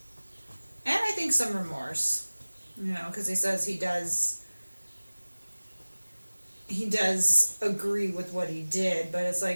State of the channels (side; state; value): both; inverted; correlation -1.00